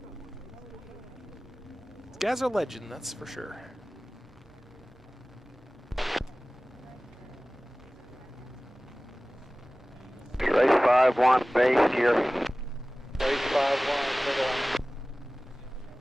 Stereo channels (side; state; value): both; normal; correlation 0.98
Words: legend, that's for sure. Race 5-1, base gear. Race 5-1, circle line.